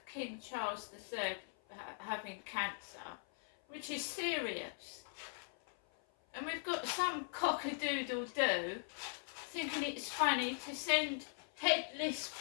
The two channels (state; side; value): silent; right; 51 dB below the other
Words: King Charles III having cancer, which is serious. And we've got some cock-a-doodle-doo thinking it's funny to send headless